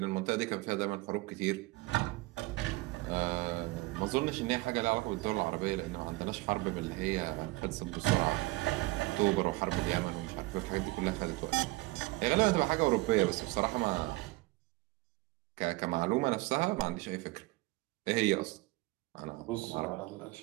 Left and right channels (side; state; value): left; quieter; 22.1 dB